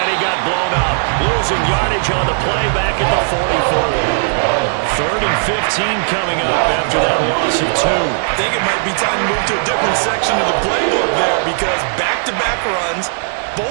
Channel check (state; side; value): silent; left; digital silence